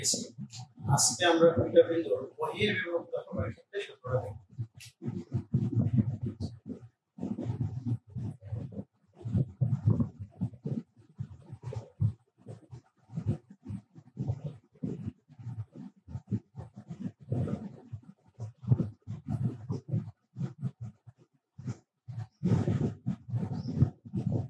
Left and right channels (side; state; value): both; identical; correlation 1.00